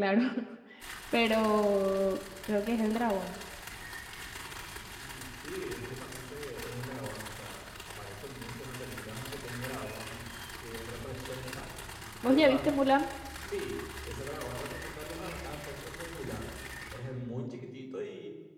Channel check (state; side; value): identical; both; correlation 1.00